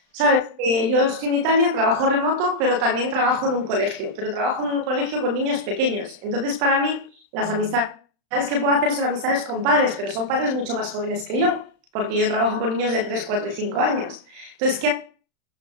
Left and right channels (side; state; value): left; late; 35 ms